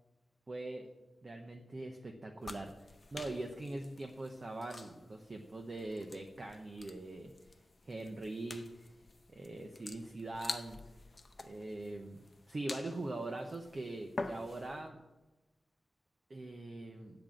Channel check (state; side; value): normal; both; correlation 0.93